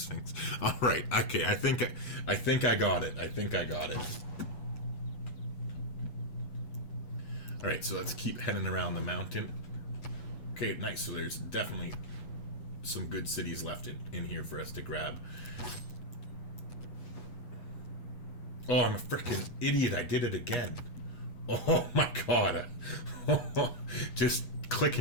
All right, okay, I think I got it. I think I got it. All right, so let's keep heading around the mountain. Okay, nice. So there's definitely some good cities left in here for us to grab. Oh, I'm a freaking idiot. I did it again. Oh my god. Just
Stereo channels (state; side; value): late; right; 8.2 ms